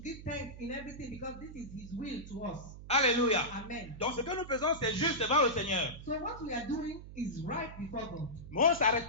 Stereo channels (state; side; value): noise; right; hum, 14 dB below the sound